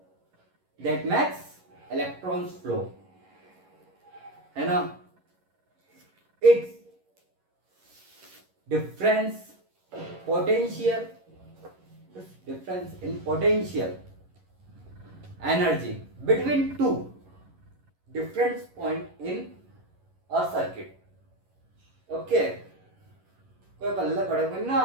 that makes electrons flow, है ना। It's difference potential difference in potential energy between two different point in a circuit. Okay, कोई पल्ले पड़े कोई ना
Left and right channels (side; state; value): left; late; 11 ms